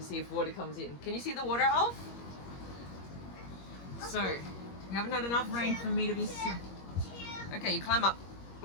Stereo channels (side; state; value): right; late; 21 ms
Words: see if water comes in. Can you see the water, Alf? So, we haven't had enough rain for me to be... Okay, you climb up.